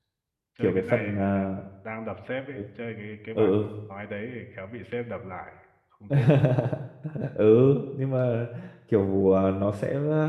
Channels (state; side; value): identical; both; correlation 1.00